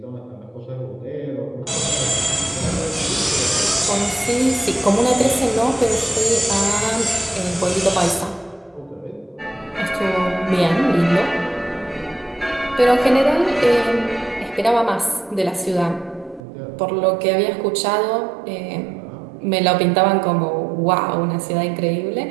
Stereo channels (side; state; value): left; drops out; at 16.4 s